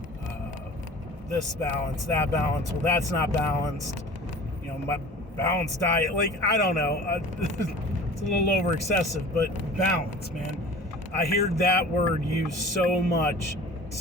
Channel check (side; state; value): both; normal; correlation 0.42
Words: this balance, that balance. Well, that's not balanced. My balanced diet, I don't know. It's a little over excessive, but balance, man. I hear that word used so much,